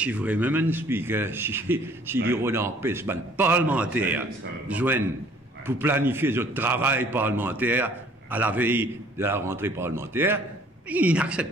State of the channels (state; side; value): normal; both; correlation 0.57